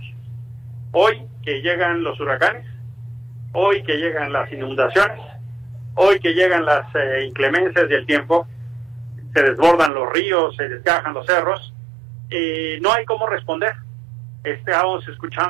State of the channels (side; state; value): left; drops out; at 9.9 s